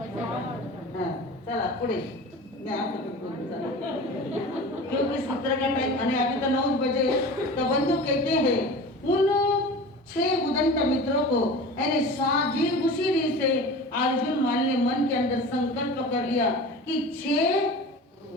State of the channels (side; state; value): both; normal; correlation 0.36